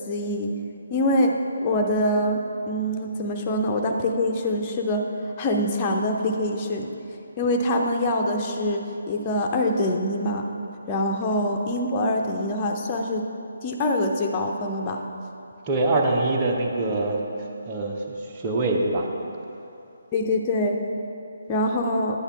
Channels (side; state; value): both; inverted; correlation -0.52